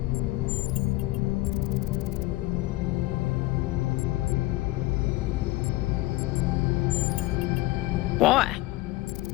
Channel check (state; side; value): quieter; right; 18.9 dB